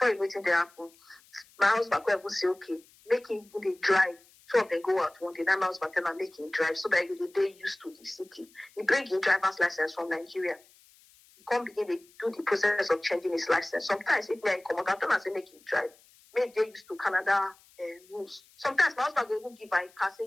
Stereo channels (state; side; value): noise; left; hiss, 28 dB below the sound